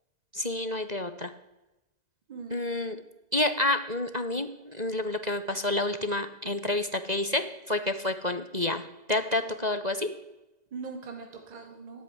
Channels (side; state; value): left; late; 2.0 ms